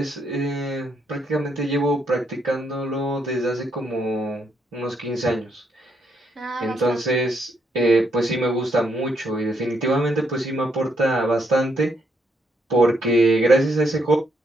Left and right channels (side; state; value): both; normal; correlation 0.74